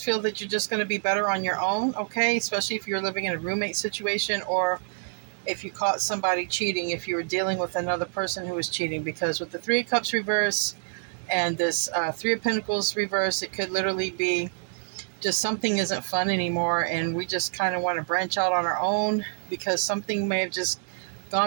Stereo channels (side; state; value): left; silent; 60 dB below the other